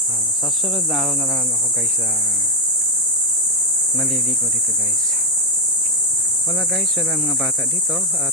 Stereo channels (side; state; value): both; normal; correlation 0.04